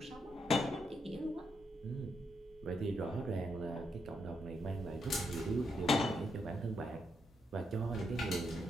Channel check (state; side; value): normal; both; correlation 0.80